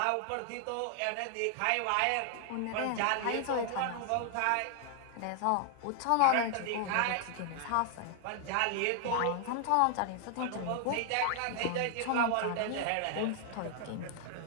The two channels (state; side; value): different; both; correlation 0.00